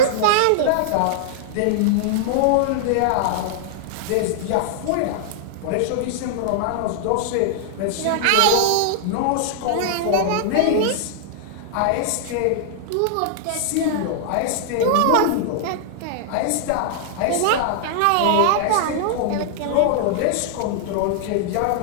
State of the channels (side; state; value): both; different; correlation -0.01